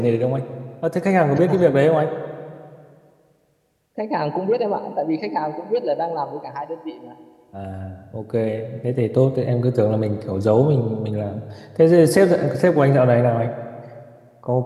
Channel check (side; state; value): both; identical; correlation 1.00